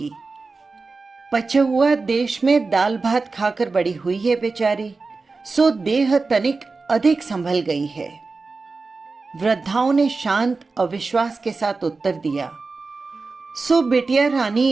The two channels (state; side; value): quieter; left; 4.0 dB